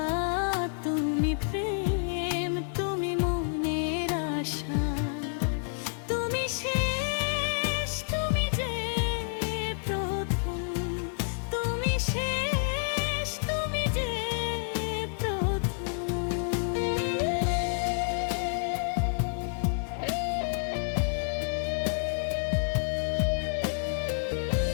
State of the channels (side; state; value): right; silent; 58 dB below the other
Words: তুমি প্রেম, তুমি মনের আশা। তুমি শেষ, তুমি যে প্রথম, তুমি শেষ, তুমি যে প্রথম।